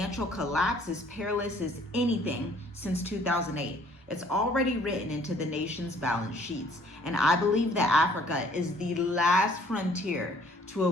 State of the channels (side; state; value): both; normal; correlation 0.59